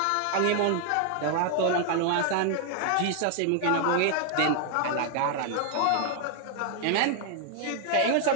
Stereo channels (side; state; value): both; different; correlation 0.00